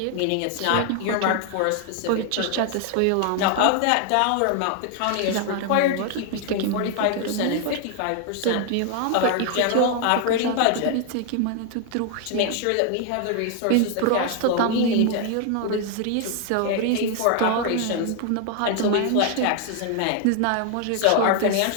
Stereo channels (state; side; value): different; both; correlation 0.00